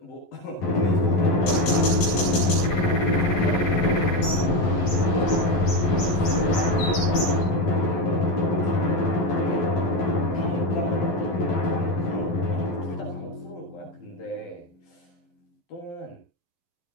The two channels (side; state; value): right; late; 12 ms